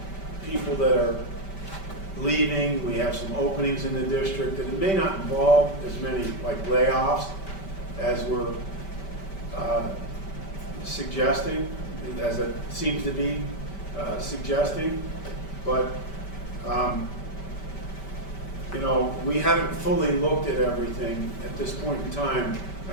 people that are leaving, we have some openings in the district, and it may not involve as many like layoffs as we're suggesting, as it seems to be suggesting, but we haven't fully looked at everything at this point in time.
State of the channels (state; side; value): late; right; 5.2 ms